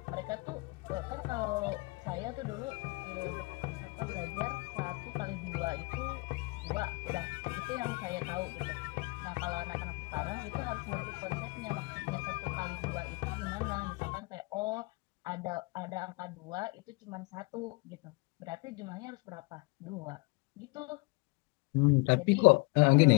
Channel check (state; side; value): quieter; right; 26.6 dB